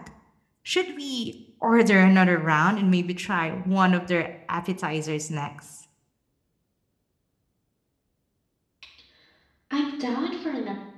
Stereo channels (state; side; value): identical; both; correlation 1.00